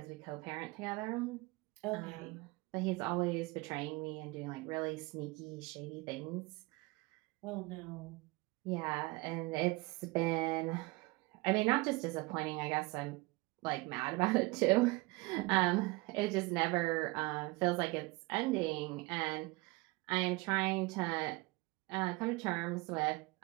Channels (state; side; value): quieter; left; 24.1 dB